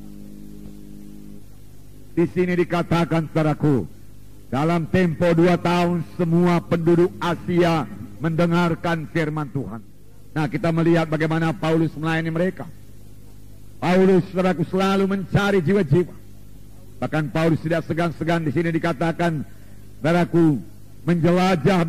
Di sini dikatakan, saudaraku, dalam tempo 2 tahun semua penduduk Asia mendengarkan firman Tuhan. Nah, kita melihat bagaimana Paulus melayani mereka. Paulus, saudaraku, selalu mencari jiwa-jiwa. Bahkan Paulus tidak segan-segan, di sini dikatakan, saudaraku, menjelajah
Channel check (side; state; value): both; identical; correlation 1.00